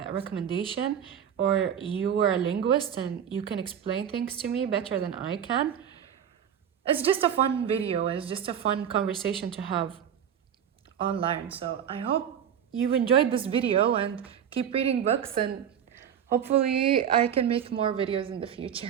recommendation, or you are a linguist and you can explain things to me better than I can. It's just a fun video. It's just a fun conversation to have online. So I hope you enjoyed this video and keep reading books, and hopefully I can make more videos in the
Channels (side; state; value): left; quieter; 8.9 dB